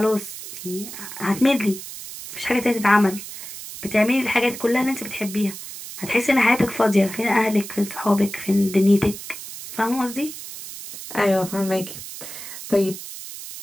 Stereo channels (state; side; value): noise; right; hiss, 11 dB below the sound